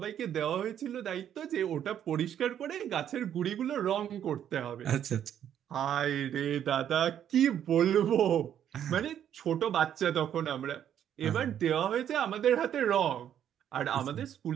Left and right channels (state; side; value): quieter; left; 9.9 dB